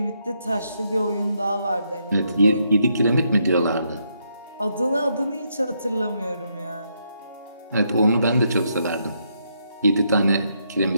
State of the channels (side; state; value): both; inverted; correlation -0.77